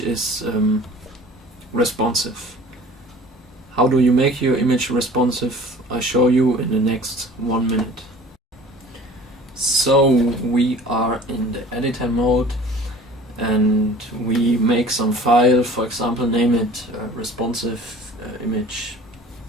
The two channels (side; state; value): both; normal; correlation 0.46